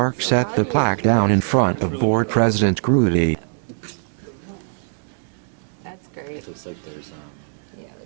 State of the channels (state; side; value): silent; left; 64 dB below the other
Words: set the plaque down in front of Board President Grudy.